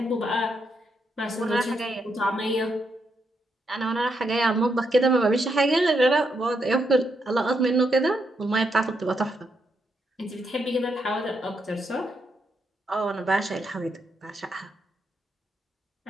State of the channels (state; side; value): normal; both; correlation 0.80